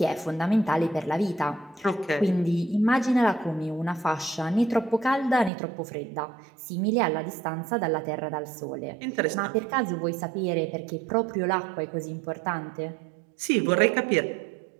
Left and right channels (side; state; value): left; drops out; at 5.5 s